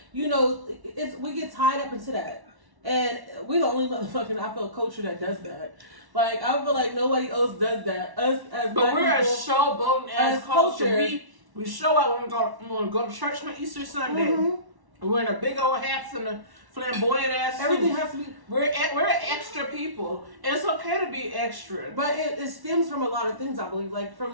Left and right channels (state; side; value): late; left; 1.1 ms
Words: you know, we get tied up into that. And we're the only motherfucking, I feel, culture that does that. Like, I feel like nobody else does that. Us as But we're people, a showboating as culture. We show out when we go to church on Easter Sunday. Mm-hmm. We're in a big old hats and a flamboyant ass suit. Everything has to be. We're extra people. And it's okay to be extra. But it stems from a lot of things, I believe. Like, from